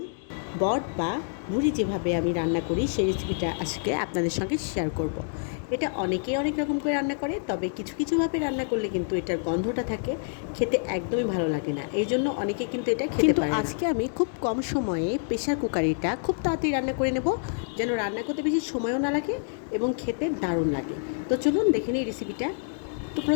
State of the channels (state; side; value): silent; right; digital silence